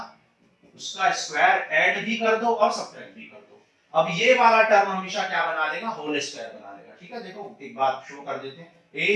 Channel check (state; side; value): identical; both; correlation 1.00